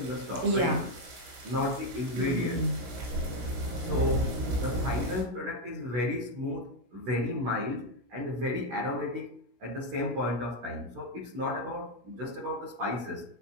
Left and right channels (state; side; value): late; left; 16 ms